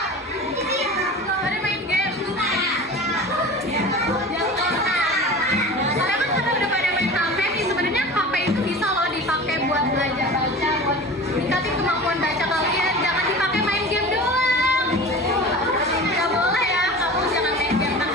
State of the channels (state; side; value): normal; both; correlation 0.36